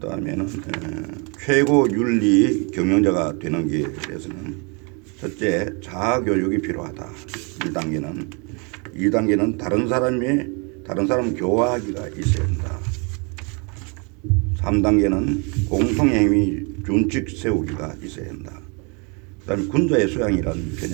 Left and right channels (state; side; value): quieter; left; 33.2 dB